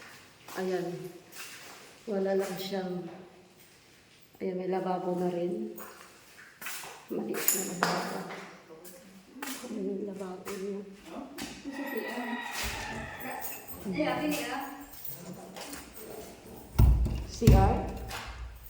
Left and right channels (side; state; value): both; identical; correlation 1.00